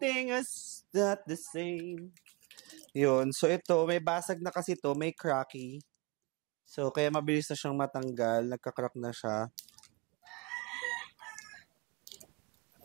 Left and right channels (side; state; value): left; quieter; 27.6 dB